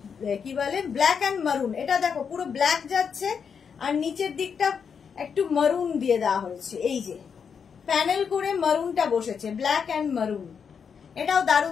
কি বলে ব্ল্যাক অ্যান্ড মারুন। এটা দেখো পুরো ব্ল্যাক যাচ্ছে আর নিচের দিকটা একটু মারুন দিয়ে দেওয়া হয়েছে, এই যে প্যানেল করে মারুনটা বসেছে, ব্ল্যাক অ্যান্ড মারুন। এটাও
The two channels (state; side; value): quieter; right; 6.6 dB